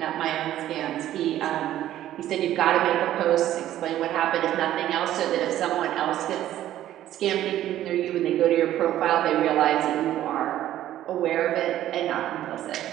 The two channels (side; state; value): left; quieter; 12.8 dB